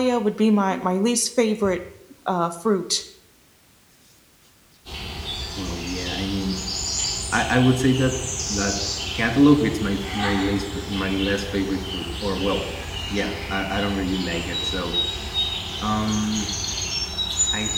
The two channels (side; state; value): both; identical; correlation 1.00